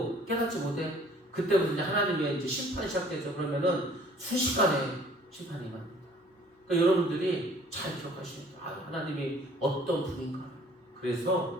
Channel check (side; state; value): both; normal; correlation 0.54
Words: 깨닫지 못해. 그때부터 이제 하나님의 이제 심판이 시작되죠. 그러면은 순식간에 심판이 임합니다. 그러니까 여러분들이 잘 기억하시면 돼요. 하나님이 어떤 분인가.